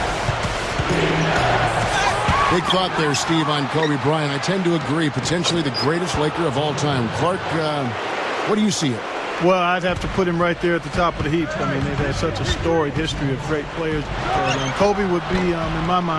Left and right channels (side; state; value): both; identical; correlation 1.00